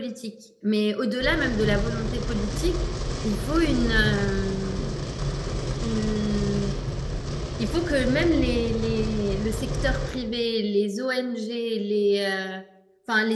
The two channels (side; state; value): both; identical; correlation 1.00